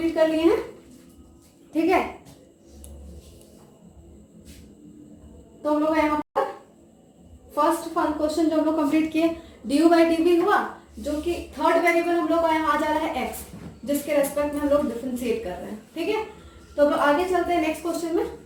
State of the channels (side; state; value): both; identical; correlation 1.00